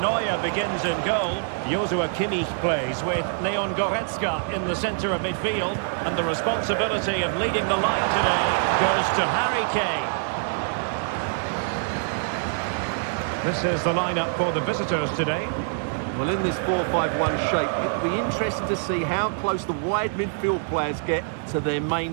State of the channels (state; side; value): silent; left; digital silence